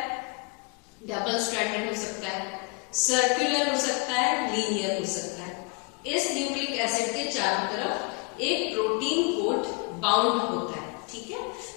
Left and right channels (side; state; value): right; quieter; 30.2 dB